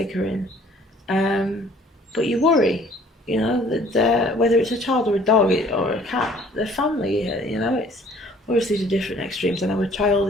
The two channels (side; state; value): both; normal; correlation 0.55